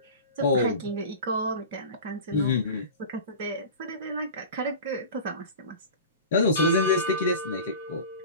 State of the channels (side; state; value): both; inverted; correlation -0.34